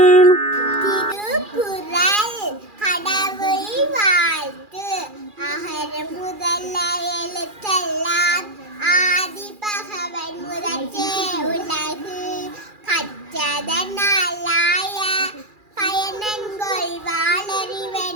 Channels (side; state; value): left; late; 2.4 ms